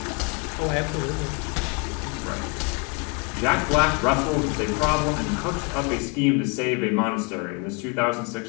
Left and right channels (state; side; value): quieter; right; 31.3 dB